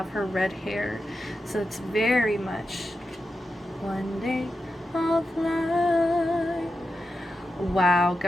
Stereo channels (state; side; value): normal; both; correlation 0.89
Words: her red hair. So it's very much, one day I'll fly. Wow,